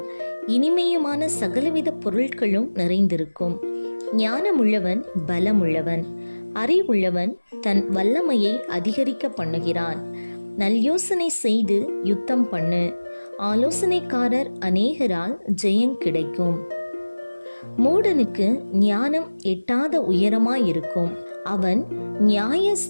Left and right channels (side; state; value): both; inverted; correlation -1.00